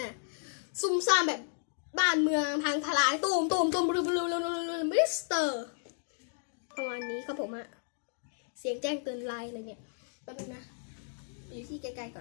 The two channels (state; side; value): silent; right; digital silence